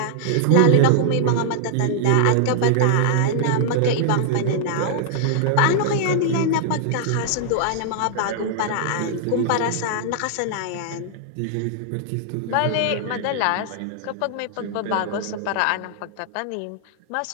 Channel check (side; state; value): both; different; correlation -0.01